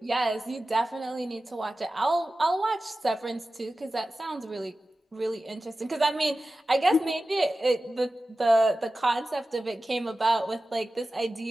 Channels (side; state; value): both; normal; correlation 0.95